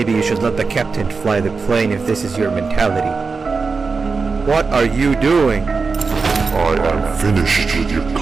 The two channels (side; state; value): left; quieter; 4.6 dB